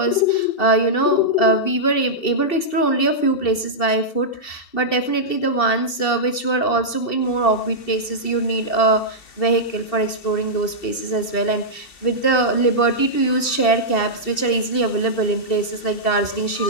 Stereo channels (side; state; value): right; late; 2.7 ms